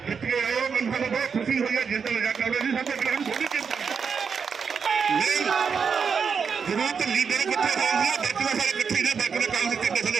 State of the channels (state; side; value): quieter; left; 6.1 dB